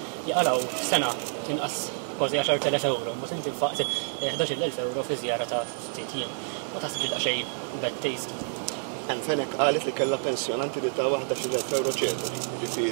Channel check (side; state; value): left; silent; digital silence